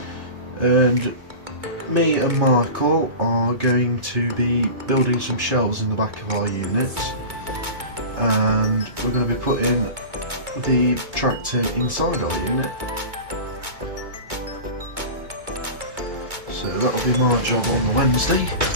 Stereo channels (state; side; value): late; left; 2.2 ms